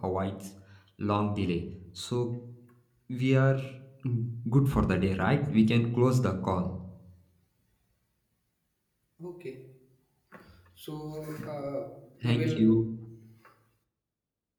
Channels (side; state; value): both; identical; correlation 1.00